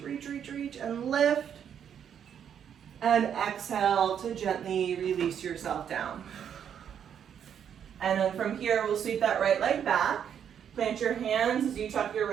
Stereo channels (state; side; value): quieter; left; 8.6 dB